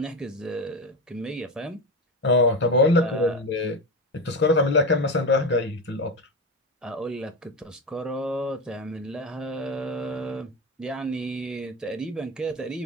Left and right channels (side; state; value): both; normal; correlation 0.20